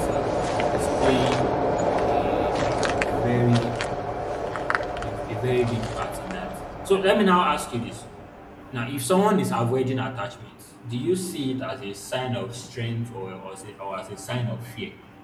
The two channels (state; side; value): identical; both; correlation 1.00